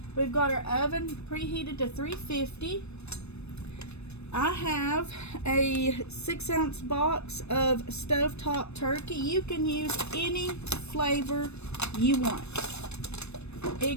We've got our oven preheated to 350. I have a 6-ounce box of stovetop turkey. You can use any flavor you want.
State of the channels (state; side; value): late; right; 0.81 ms